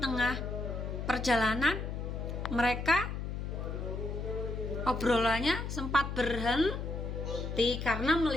perjalanan mereka obrolannya sempat berhenti karena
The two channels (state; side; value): noise; left; hum, 4 dB below the sound